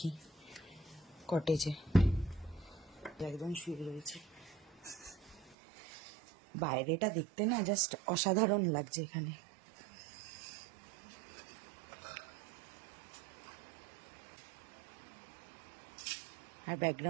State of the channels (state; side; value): drops out; left; at 5.6 s